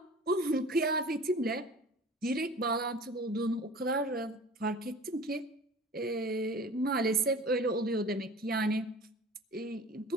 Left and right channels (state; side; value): normal; both; correlation 0.42